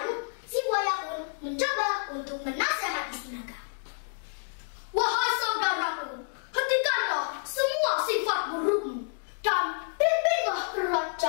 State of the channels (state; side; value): silent; right; digital silence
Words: si Buaya pun mencoba untuk menasihati si Naga. Wahai saudaraku, hentikanlah semua sifat burukmu dan pimpinlah